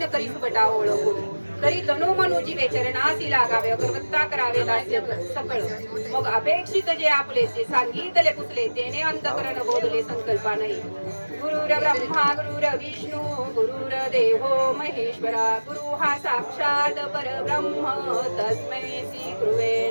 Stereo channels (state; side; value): inverted; both; correlation -1.00